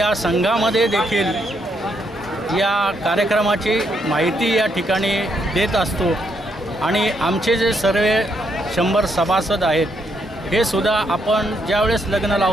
संघामध्ये देखील या कार्यक्रमाची माहिती या ठिकाणी देत असतो आणि आमचे जे सर्व 100 सभासद आहेत हे सुद्धा आपण ज्यावेळेस लग्न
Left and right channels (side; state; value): both; normal; correlation 0.76